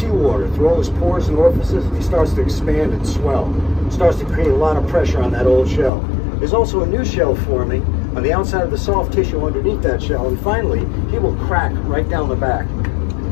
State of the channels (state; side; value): drops out; right; at 5.9 s